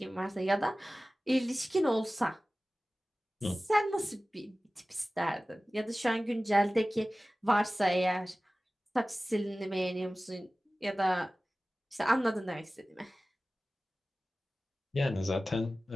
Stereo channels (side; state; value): both; normal; correlation 0.97